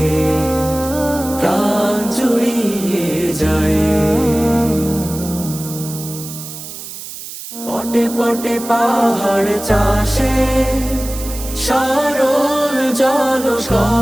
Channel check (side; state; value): right; noise; hiss, 11 dB below the sound